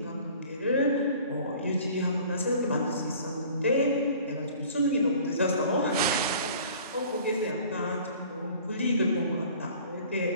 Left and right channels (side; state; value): both; inverted; correlation -0.49